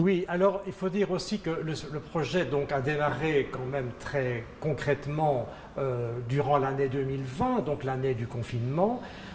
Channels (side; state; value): both; identical; correlation 1.00